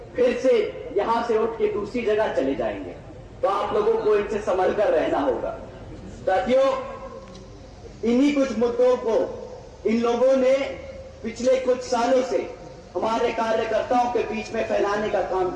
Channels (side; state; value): both; identical; correlation 1.00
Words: फिर से यहां से उठ के दूसरी जगह चले जाएंगे। तो आप लोगों को इनसे संभल कर रहना होगा। साथियों, इन्हीं कुछ मुद्दों को इन लोगों ने पिछले कुछ सालों से हमारे कार्यकर्ताओं के बीच में फैलाने का काम